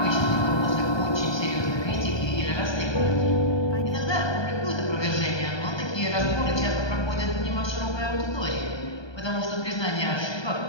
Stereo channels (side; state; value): right; late; 1.2 ms